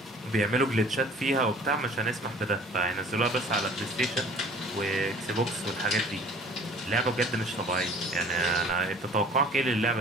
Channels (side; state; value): both; normal; correlation 0.49